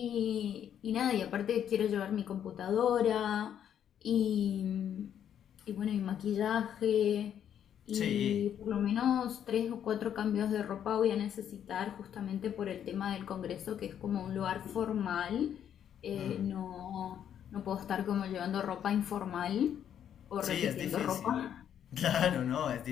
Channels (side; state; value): right; quieter; 9.4 dB